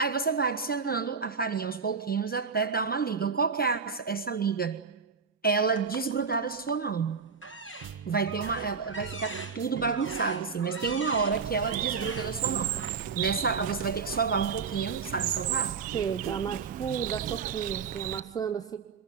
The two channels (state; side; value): quieter; left; 5.5 dB